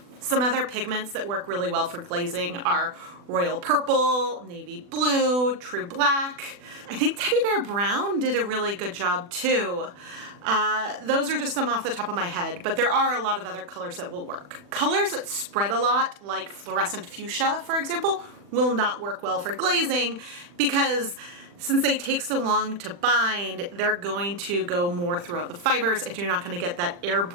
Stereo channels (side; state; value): left; late; 40 ms